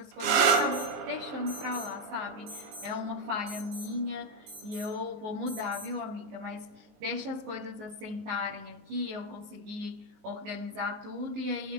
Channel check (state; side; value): late; left; 19 ms